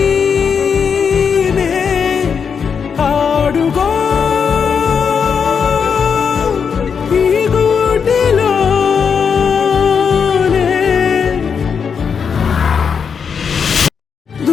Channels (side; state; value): right; quieter; 6.5 dB